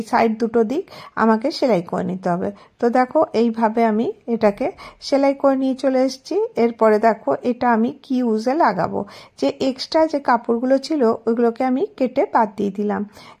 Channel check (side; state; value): both; identical; correlation 1.00